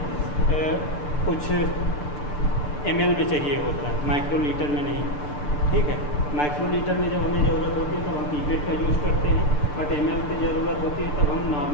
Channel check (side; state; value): right; late; 6.8 ms